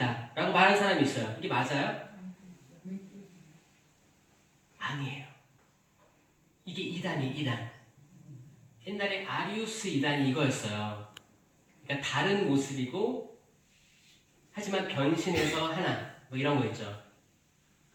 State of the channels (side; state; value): both; identical; correlation 1.00